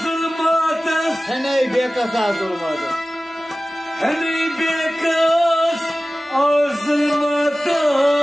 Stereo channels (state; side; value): normal; both; correlation 0.96